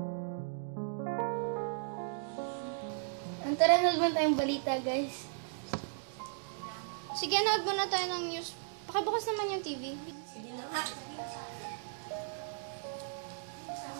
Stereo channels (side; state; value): left; silent; digital silence